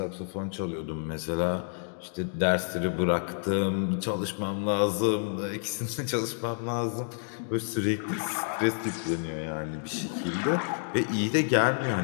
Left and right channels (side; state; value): right; silent; digital silence